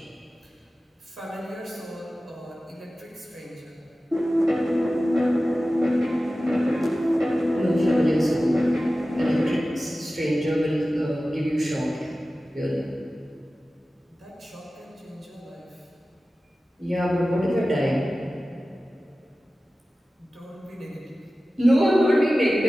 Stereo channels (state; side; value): normal; both; correlation 0.96